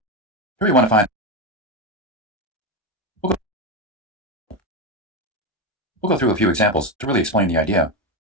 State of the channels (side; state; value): both; normal; correlation 0.13